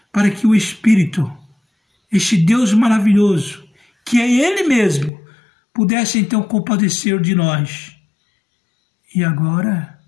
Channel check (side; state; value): right; drops out; at 5.1 s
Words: para que o Espírito, este Deus maravilhoso, que é Ele mesmo, pudesse então compadecer de nós. E agora,